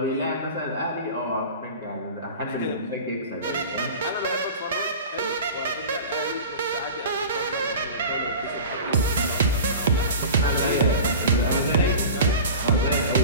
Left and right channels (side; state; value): both; inverted; correlation -0.35